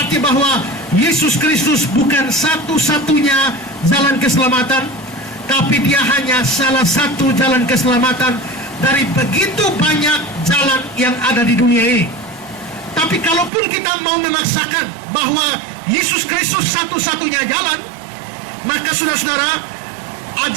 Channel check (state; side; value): drops out; left; at 13.5 s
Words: bahwa Yesus Kristus bukan satu-satunya jalan keselamatan, tapi dia hanya salah satu jalan keselamatan dari begitu banyak jalan yang ada di dunia ini. Tapi kalaupun kita mau memaksakan bahwa Yesus Kristus satu-satunya jalan, maka saudara-saudara,